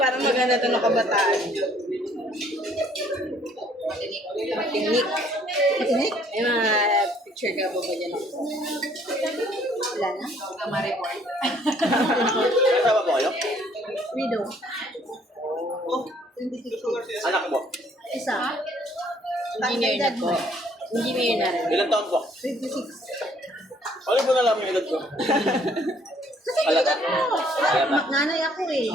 maganda to ng kabataan. Matinik. Matinik? May mga picture ka ba ba dyan? Wala na. Ma-report. Kasama po kayo? Widow. Anak mo? Isa. Engineer na po. Engineer na rin. Ilang taon po? 26. Ano po nalaman yung edad ko? Alata. Nanay ako eh.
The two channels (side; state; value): both; normal; correlation 0.62